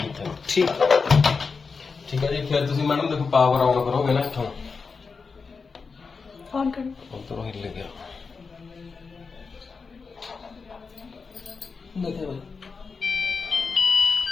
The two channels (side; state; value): right; quieter; 4.9 dB